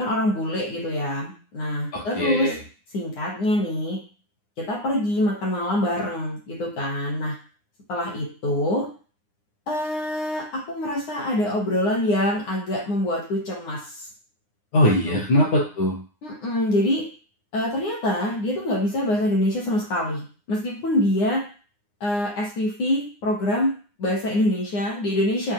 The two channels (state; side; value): late; right; 9.7 ms